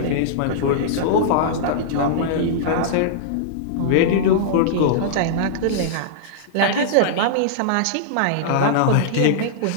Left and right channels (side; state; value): both; different; correlation -0.02